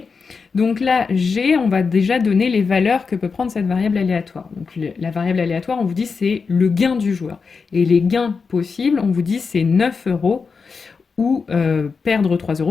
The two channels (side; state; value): right; quieter; 5.1 dB